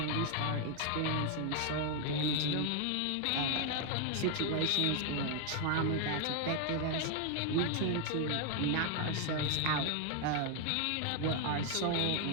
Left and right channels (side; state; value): both; different; correlation 0.00